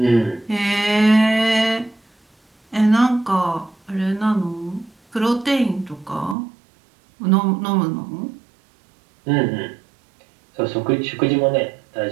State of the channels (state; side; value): drops out; left; at 6.4 s